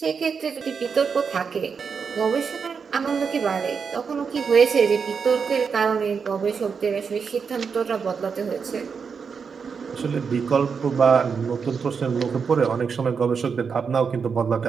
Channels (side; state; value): left; quieter; 5.9 dB